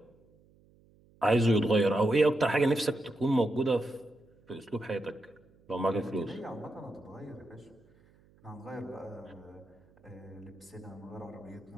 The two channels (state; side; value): noise; right; hum, 30 dB below the sound